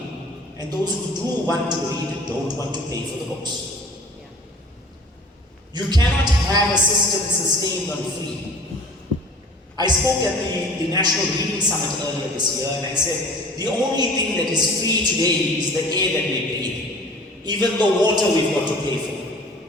and those who do want to read don't want to pay for the books. You cannot have a system sustained on free. I spoke at the National Reading Summit earlier this year, and I said, the only thing that is free today is the air that we breathe. Even the water we've got to pay for.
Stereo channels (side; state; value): both; normal; correlation 0.46